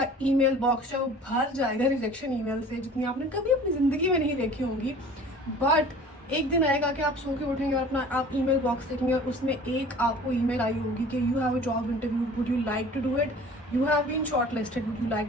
ईमेल बॉक्स है वो भर जाएगा रिजेक्शन ईमेल से, जितनी आपने कभी अपनी ज़िंदगी में नहीं देखी होंगी, बट एक दिन आएगा कि आप सो के उठेंगे और अपना आप ईमेल बॉक्स देखेंगे और उसमें एक आपको ईमेल आई होगी कि you have a job interview, would you like to do it, you have been shortlisted, would you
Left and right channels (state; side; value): normal; both; correlation 0.46